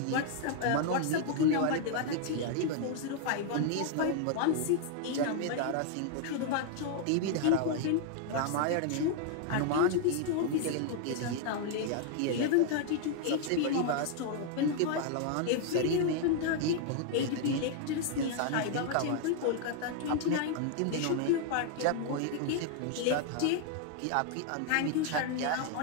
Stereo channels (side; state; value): both; different; correlation 0.00